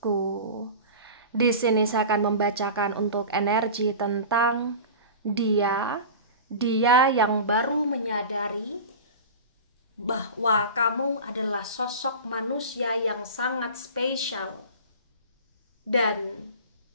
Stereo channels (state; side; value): inverted; both; correlation -0.33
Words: Di sini saya akan membacakan untuk energi tentang dia yang baru menyadari bahwa kamu adalah sosok manusia yang sangat spesial dan